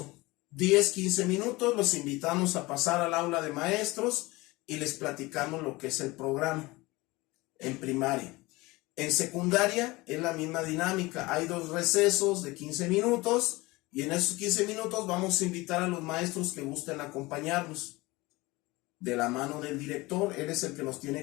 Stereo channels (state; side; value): quieter; right; 21.7 dB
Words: 10-15 minutos, los invitamos a pasar al aula de maestros y les platicamos lo que es el programa en primaria. En secundaria es la misma dinámica, hay 2 recesos de 15 minutos y en esos 15 minutos vamos a invitar a los maestros que gusten acompañarnos de la mano del director, él es el que nos tiene